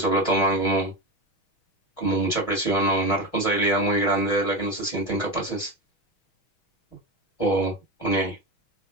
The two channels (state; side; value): late; right; 6.3 ms